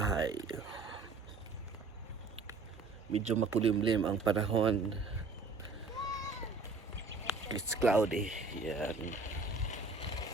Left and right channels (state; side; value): quieter; left; 3.8 dB